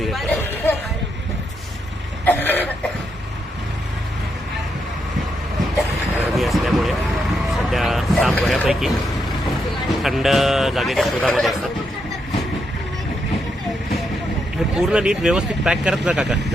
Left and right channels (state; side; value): normal; both; correlation 0.80